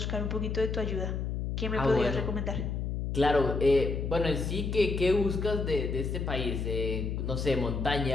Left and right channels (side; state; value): left; noise; hum, 2 dB below the sound